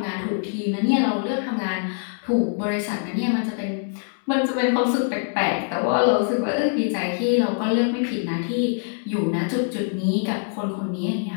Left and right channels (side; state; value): right; silent; 63 dB below the other